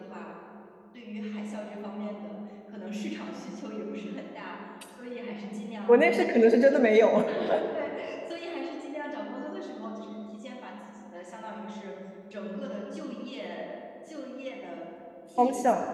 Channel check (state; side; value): identical; both; correlation 1.00